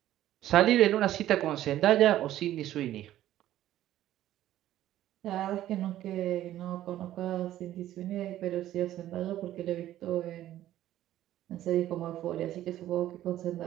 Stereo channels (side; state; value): left; quieter; 13.2 dB